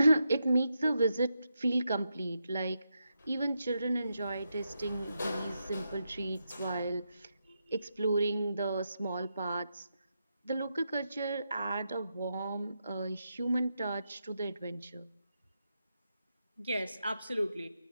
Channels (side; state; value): both; inverted; correlation -0.85